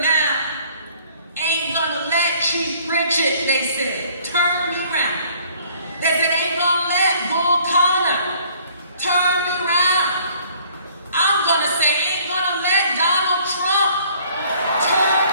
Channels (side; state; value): both; inverted; correlation -0.58